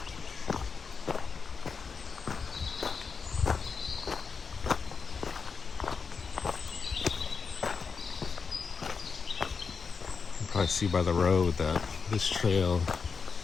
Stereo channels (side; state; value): right; quieter; 5.3 dB